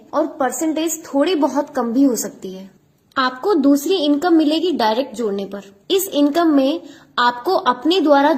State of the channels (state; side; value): identical; both; correlation 1.00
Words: और परसेंटेज थोड़ी बहुत कम भी हो सकती है। आपको दूसरी इनकम मिलेगी डायरेक्ट जोड़ने पर। इस इनकम में आपको अपने द्वारा